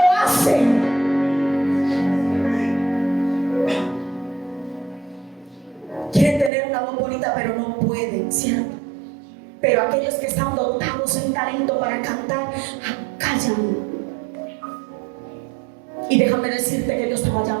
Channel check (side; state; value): left; drops out; at 6.5 s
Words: hacen. Quieren tener una voz bonita, pero no pueden, ¿cierto? Pero aquellos que están dotados en talento para cantar, callan. Y déjame decirte que Dios te va a